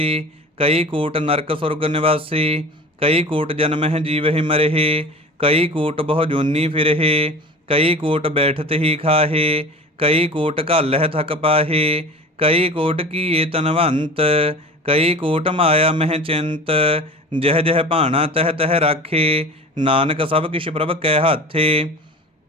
ਕਈ ਕੋਟ ਨਰਕ ਸੁਰਗ ਨਿਵਾਸੀ। ਕਈ ਕੋਟ ਜਨਮਹਿ ਜੀਵਹਿ ਮਰਹਿ, ਕਈ ਕੋਟ ਬਹੁ ਜੋਨੀ ਫਿਰਹਿ। ਕਈ ਕੋਟ ਬੈਠਤ ਹੀ ਖਾਹੇ, ਕਈ ਕੋਟ ਘਾਲਹਿ ਥਕ ਪਾਹੇ। ਕਈ ਕੋਟ ਕੀਏ ਤਨਵੰਤ, ਕਈ ਕੋਟ ਮਾਇਆ ਮਹਿ ਚਿੰਤ। ਜਹ ਜਹ ਭਾਣਾ ਤਹ ਤਹ ਰਾਖੇ, ਨਾਨਕ ਸਭ ਕਿਛ ਪ੍ਰਭ ਕੈ ਹਾਥੇ।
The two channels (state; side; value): normal; both; correlation 0.37